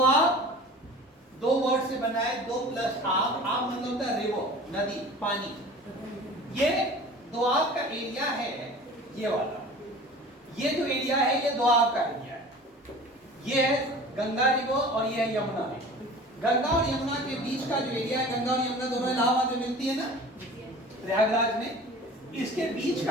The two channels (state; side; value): normal; both; correlation 0.41